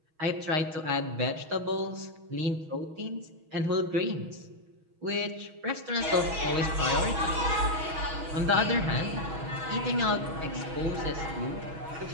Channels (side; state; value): left; late; 6.3 ms